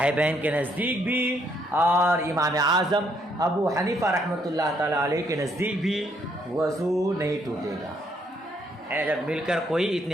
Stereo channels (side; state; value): both; normal; correlation 0.71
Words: کے نزدیک بھی اور امام اعظم ابو حنیفہ رحمۃ اللہ تعالی علیہ کے نزدیک بھی وضو نہیں ٹوٹے گا۔ جب مل کر کوئی